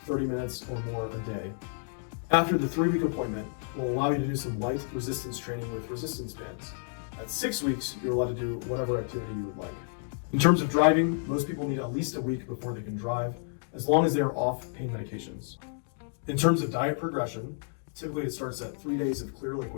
30 minutes or more a day. After the 3-week appointment, we'll allow you to do some light resistance training with resistance bands. At 6 weeks, you're allowed to do whatever activity you would like. In terms of driving, most people need at least a week before they can drive, as long as they are off pain medications. In terms of diet progression, typically it starts at 3 days of clear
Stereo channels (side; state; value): right; silent; digital silence